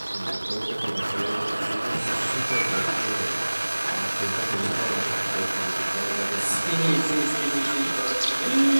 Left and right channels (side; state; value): both; inverted; correlation -1.00